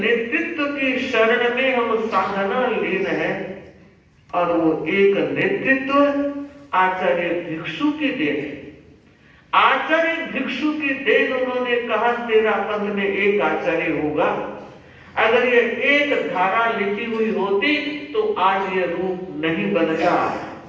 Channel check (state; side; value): identical; both; correlation 1.00